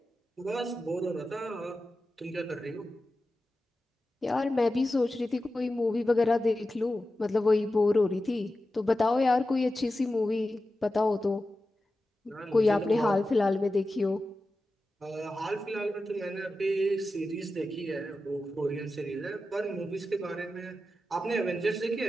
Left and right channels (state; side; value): normal; both; correlation 0.92